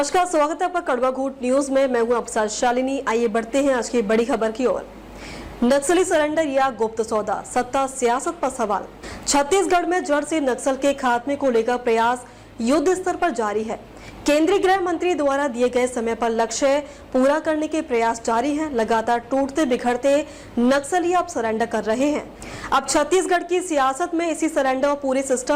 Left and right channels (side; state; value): both; identical; correlation 1.00